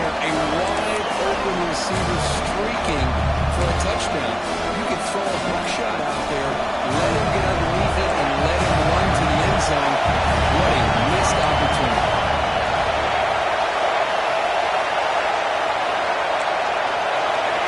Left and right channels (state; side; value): identical; both; correlation 1.00